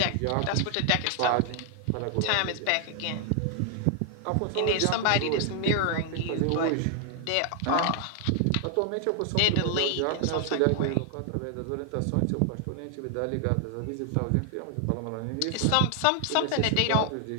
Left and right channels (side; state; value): both; different; correlation 0.00